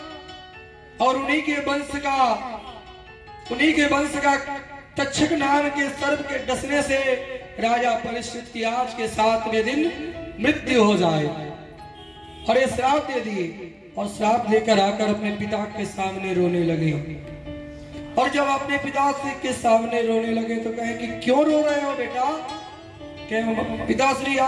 और उन्हीं के वंश का तक्षक नाम के सर्प के डसने से राजा परीक्षित की आज के 7वें दिन मृत्यु हो जाए। और ये श्राप दे दिए और श्राप लेकर आकर अपने पिता के सामने रोने लगे। और जब अपने पिता के सामने रोने लगे तो कहे कि क्यों रो रहे हो बेटा? कहे पिताश्री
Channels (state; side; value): identical; both; correlation 1.00